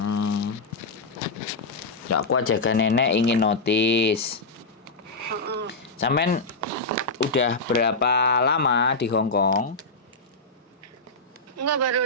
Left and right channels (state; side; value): quieter; right; 3.3 dB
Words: Nggak kuat jaga nenek ingin notis. Sampean udah berapa lama di Hong Kong? Enggak, baru